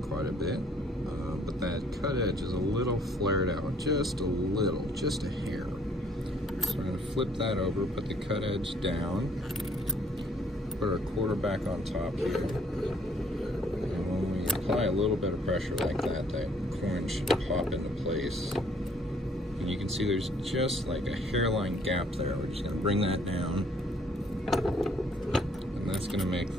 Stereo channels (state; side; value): normal; both; correlation 0.62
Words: quite a bit, but that cut edge is a little flared out, just a little, just a hair. So we're going to flip that over, put the cut edge down, put our quarter back on top here, and when we apply a little bit of pressure like that, that coin should pop into place. And you can see there's just like a hairline gap there. We're just going to bring that down, and that's going to make